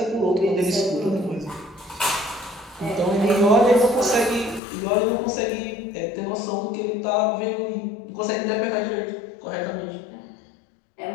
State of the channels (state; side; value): drops out; right; at 4.6 s